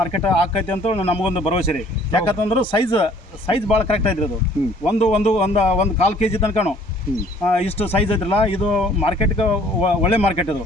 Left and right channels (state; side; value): normal; both; correlation 0.57